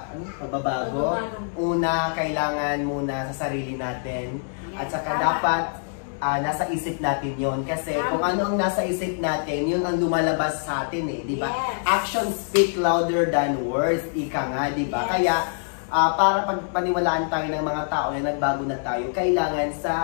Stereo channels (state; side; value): silent; right; digital silence